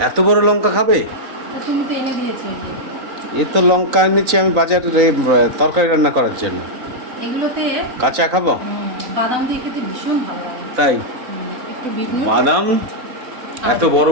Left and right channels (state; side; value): late; left; 3.9 ms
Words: এত বড় লঙ্কা খাবে? তুমি তো এনে দিয়েছো। এ তো লঙ্কা এনেছি আমি বাজারে তরকারি রান্না করার জন্য। এগুলোতে কাঁচা খাবো? বাদাম দিয়ে খেতে ভীষণ ভালো লাগে। তাই? একটু বিট নুন, বাদাম, এত বড়